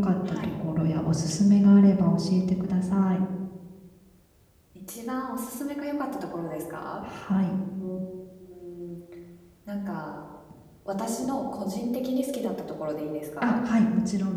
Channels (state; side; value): identical; both; correlation 1.00